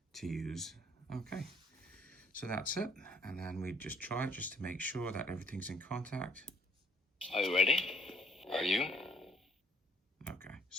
to use. Okay, so that's it, and then we just try it just to make sure that everything's in contact. Are you ready? Are you? Okay,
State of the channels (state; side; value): normal; both; correlation 0.60